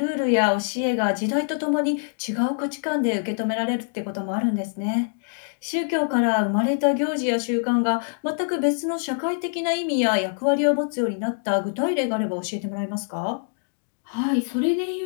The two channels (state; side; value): silent; right; digital silence